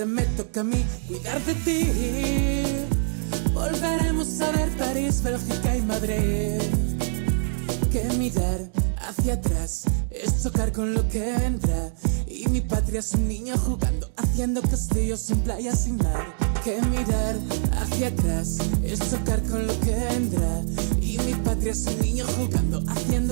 me toca a mí cuidar de ti. Volveremos a ver París, Bélgica y Madrid. Que mirar hacia atrás es chocar con lo que vendrá. Y mi patria es un niño jugando, haciendo castillos en playas sin mar. Que mirar hacia atrás es chocar con lo que vendrá. Y mi patria es un niño jugando,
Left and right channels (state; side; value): silent; left; digital silence